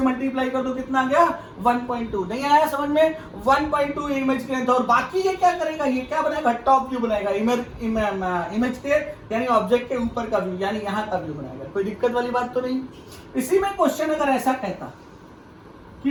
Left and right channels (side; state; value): both; identical; correlation 1.00